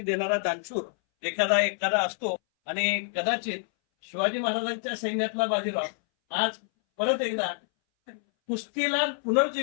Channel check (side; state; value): right; silent; 60 dB below the other